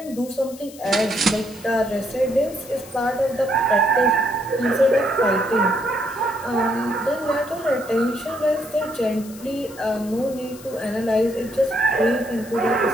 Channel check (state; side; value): noise; left; hiss, 19 dB below the sound